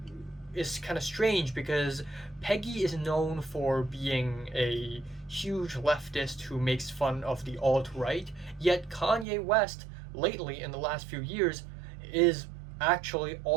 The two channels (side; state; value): left; drops out; at 9.2 s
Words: is kind of strange because Peggy is known for being a huge leftist who makes fun of the alt-right, yet Kanye West, lately in the last few years, is actually